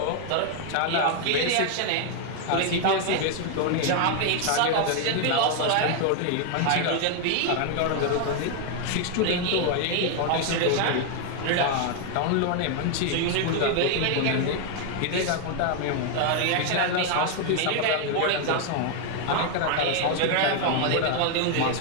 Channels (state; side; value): different; both; correlation 0.00